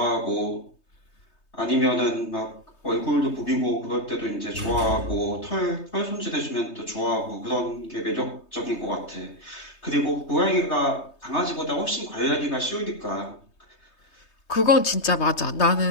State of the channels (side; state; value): right; late; 3.2 ms